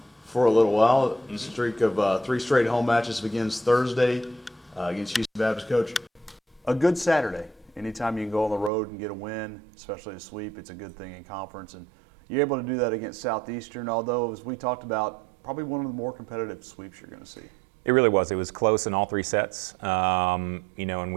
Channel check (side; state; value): left; drops out; at 8.7 s